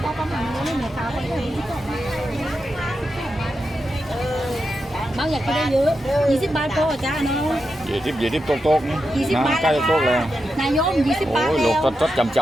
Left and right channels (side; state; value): both; normal; correlation 0.88